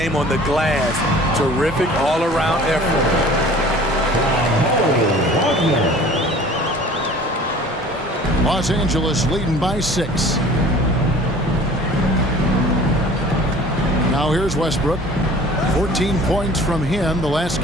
on the glass. Terrific all-around effort. Los Angeles leading by 6. Now here's Westbrook. 14 points from him the last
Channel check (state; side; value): normal; both; correlation 0.47